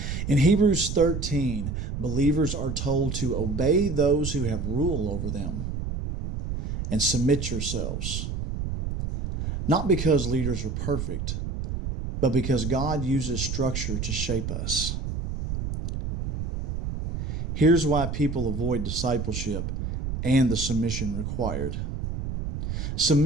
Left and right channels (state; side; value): noise; right; rumble, 4 dB below the sound